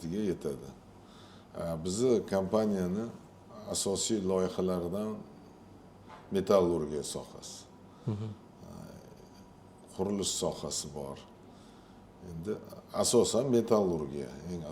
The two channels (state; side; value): identical; both; correlation 1.00